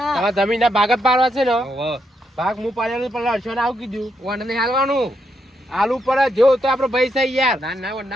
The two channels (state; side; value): normal; both; correlation 0.79